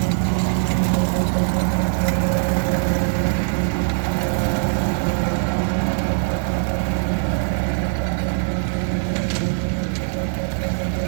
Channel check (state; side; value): silent; left; 64 dB below the other